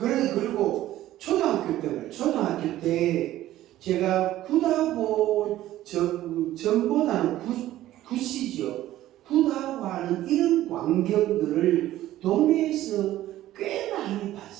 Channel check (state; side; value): quieter; left; 14.3 dB